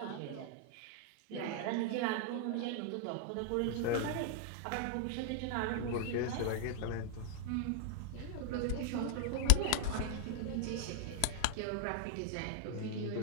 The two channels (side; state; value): both; different; correlation -0.01